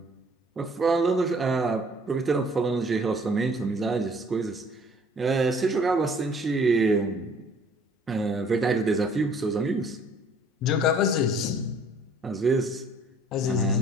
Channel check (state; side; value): normal; both; correlation 0.56